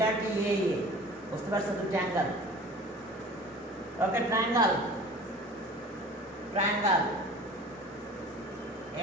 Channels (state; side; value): normal; both; correlation 0.43